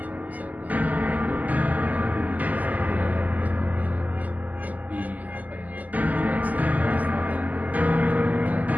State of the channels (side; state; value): left; late; 0.079 ms